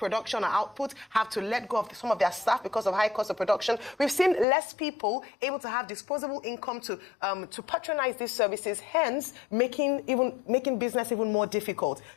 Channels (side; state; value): right; drops out; at 4.5 s